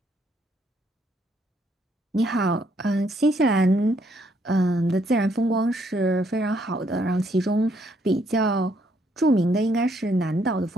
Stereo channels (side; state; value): both; normal; correlation 0.71